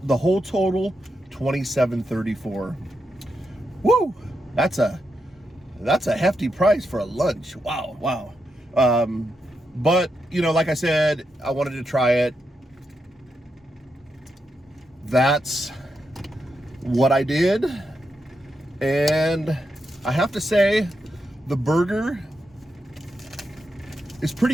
total $27.34. Woo! That's a hefty price for a lunch. Wow. But you know, like I said, I wanted to try it. That's what I did, and I have to say the burger is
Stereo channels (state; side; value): normal; both; correlation 0.84